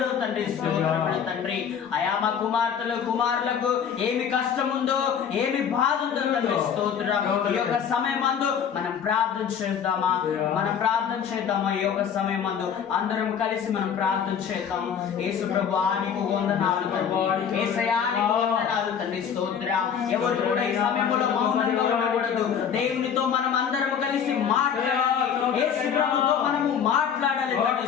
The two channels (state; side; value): quieter; right; 7.8 dB